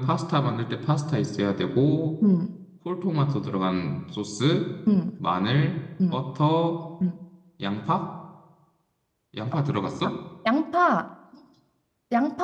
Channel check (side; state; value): both; identical; correlation 1.00